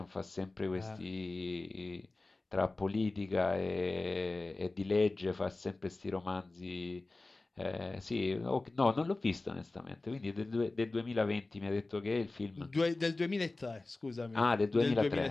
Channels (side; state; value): right; quieter; 3.2 dB